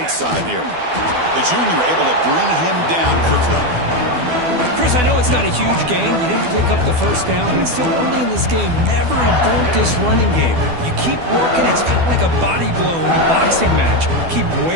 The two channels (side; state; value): left; late; 12 ms